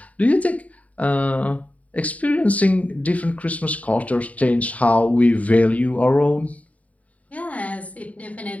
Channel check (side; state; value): right; late; 0.069 ms